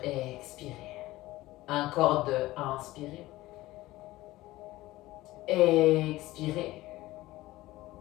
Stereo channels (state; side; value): quieter; right; 17.7 dB